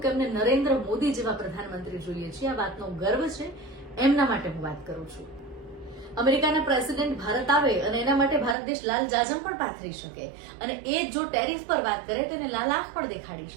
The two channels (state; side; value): drops out; left; at 8.6 s